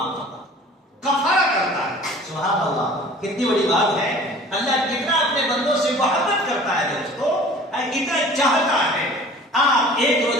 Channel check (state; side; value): normal; both; correlation 0.46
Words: کرتا ہے، کفارہ کرتا ہے۔ سبحان اللہ، کتنی بڑی بات ہے، اللہ کتنا اپنے بندوں سے محبت کرتا ہے دوستو، کتنا چاہتا ہے۔ آپ 1